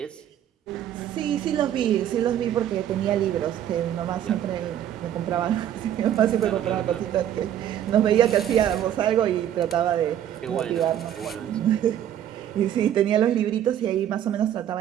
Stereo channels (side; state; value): left; quieter; 10.8 dB